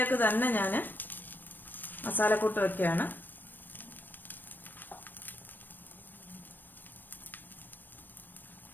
തന്നെ ഞാൻ മസാലക്കൂട്ട് വയ്ക്കുകയാണ്.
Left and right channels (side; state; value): right; late; 0.091 ms